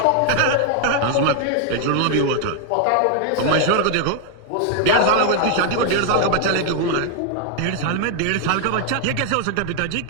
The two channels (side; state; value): both; different; correlation 0.00